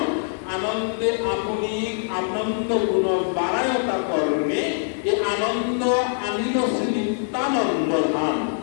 আনন্দে আপনি আনন্দ গুণ বাড়ায়তা করণে, এ আনন্দ আনিল শ্রী নিত্যানন্দ ধাম।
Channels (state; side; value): silent; right; 63 dB below the other